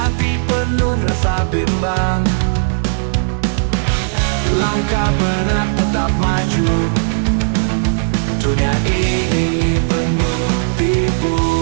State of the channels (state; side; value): silent; left; 66 dB below the other